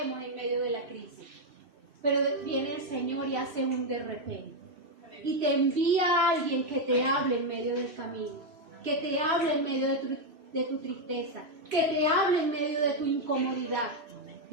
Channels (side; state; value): left; late; 3.0 ms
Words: en medio de la crisis. Pero viene el Señor y hace un de repente. Y te envía a alguien que te hable en medio del camino. Que te hable en medio de tu tristeza. Que te hable en medio de tu incomodidad,